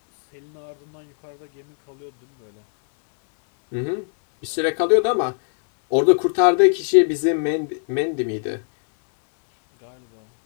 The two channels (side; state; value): right; silent; 63 dB below the other